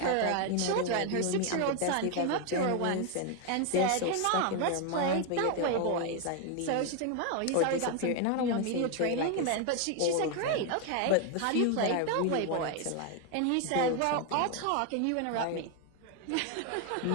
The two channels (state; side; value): different; both; correlation 0.01